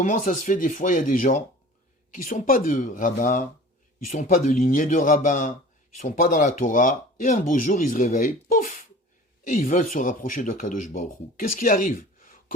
ça se fait des fois, il y a des gens qui ne sont pas de rabbins, ils ne sont pas de lignée de rabbins, ils ne sont pas dans la Torah, et un beau jour, ils se réveillent, pouf, et ils veulent se rapprocher de Kadosh Baruch Hu. Qu'est-ce qui arrive?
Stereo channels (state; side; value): normal; both; correlation 0.42